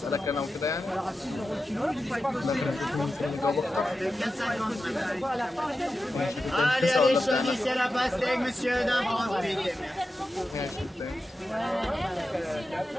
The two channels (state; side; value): normal; both; correlation 0.91